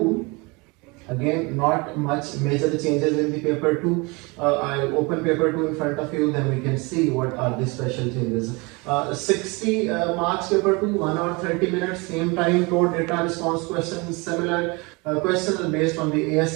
Again, not much major changes in the paper 2. I'll open paper 2 in front of you, then we can see what are the special changes. 60 marks paper 2, 1 hour 30 minutes, same time, code data response questions, similar. Questions are based on the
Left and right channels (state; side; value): quieter; left; 27.2 dB